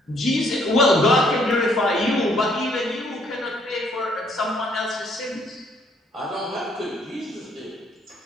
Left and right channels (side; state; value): both; normal; correlation 0.66